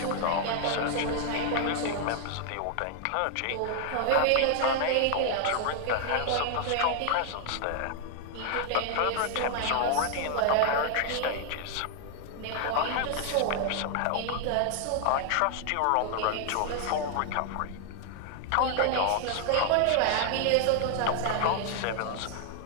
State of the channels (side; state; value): both; different; correlation 0.00